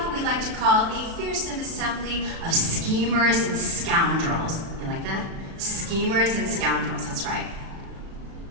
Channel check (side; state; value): left; late; 36 ms